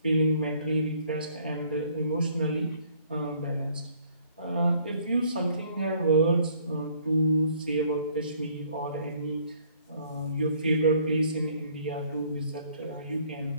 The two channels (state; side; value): inverted; both; correlation -0.61